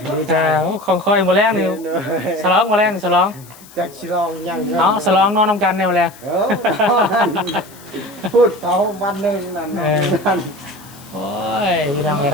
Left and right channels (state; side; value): noise; left; hiss, 22 dB below the sound